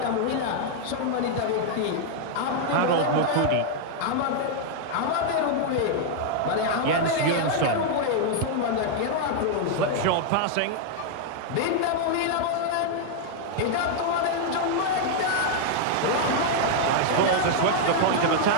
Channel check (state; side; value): different; both; correlation 0.00